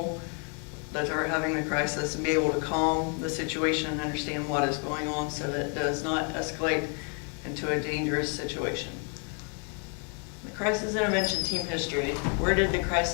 that are having the crisis and be able to calm the situation and understand what is going on so that it does not escalate into a dangerous situation. The crisis intervention team history. Where did the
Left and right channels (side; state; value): right; quieter; 39.7 dB